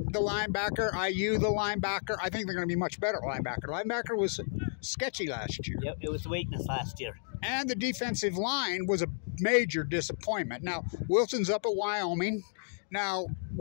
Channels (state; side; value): silent; right; digital silence